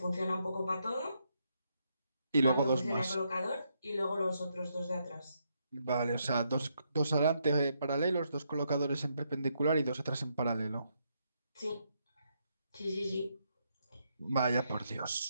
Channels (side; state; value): both; inverted; correlation -0.78